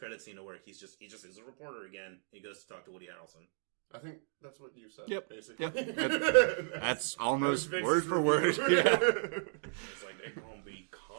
scene to work, he just is a reporter again. He goes to talk to Woody Harrelson. I think that's what you said, basically. Yep. That's almost word for word. Yeah. It's like, they're gonna be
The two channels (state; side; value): silent; left; digital silence